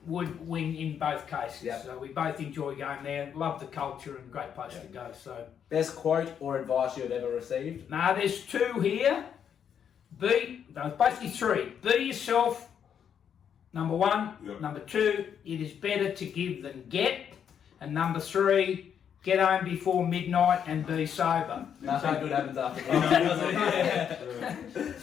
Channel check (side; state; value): right; quieter; 8.3 dB